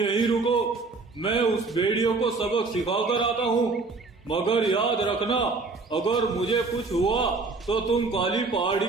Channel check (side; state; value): left; quieter; 3.9 dB